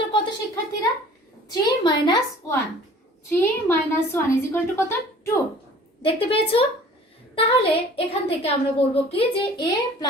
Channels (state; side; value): normal; both; correlation 0.48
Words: কত শিক্ষার্থীরা? 3 - 1। 3 - 1 ইজ ইকুয়াল টু কত? 2। দেখতে পেয়েছো? তাহলে এখান থেকে আমরা বলবো কি যে a